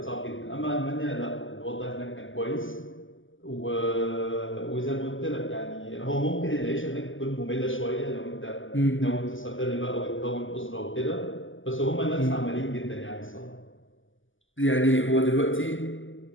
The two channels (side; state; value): right; late; 0.57 ms